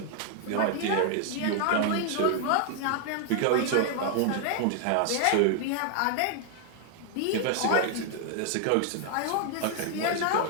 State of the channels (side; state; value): both; different; correlation 0.00